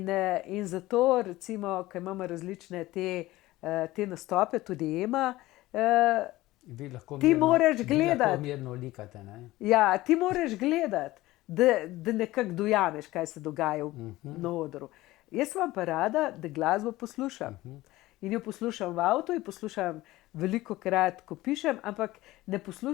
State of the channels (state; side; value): quieter; right; 17.8 dB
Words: zato, recimo, ko imamo različne te te nastope, tudi Ema, Vi lahko Ti moraš vi gledati. lahko mirno likate, ne? ja, ti moraš gledati, da nekako dojameš, kaj se dogaja na odru. Jaz vam pa rada, da glasbo poslušam. In jo poslušam v avtu, in poslušam veliko krat, ko pišem, ampak ne